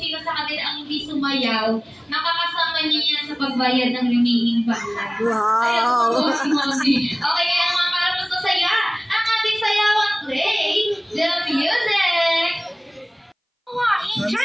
sa kanila ang hindi sumayaw, makakasama niyo yan sa pagbayad ng remaining bayad. Wow! Ayan, Mommy. Okay, kaya naman para mas masaya, ang ating sayawan, play the music! 1,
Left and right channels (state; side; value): identical; both; correlation 1.00